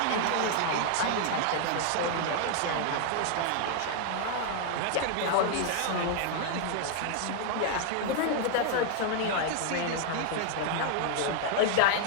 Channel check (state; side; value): different; both; correlation 0.00